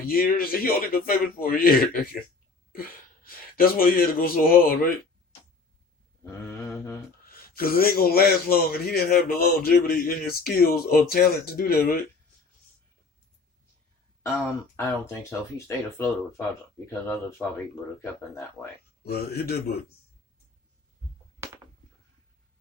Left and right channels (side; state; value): right; quieter; 4.2 dB